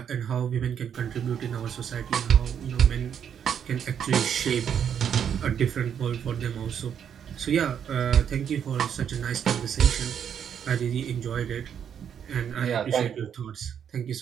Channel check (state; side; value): quieter; left; 8.4 dB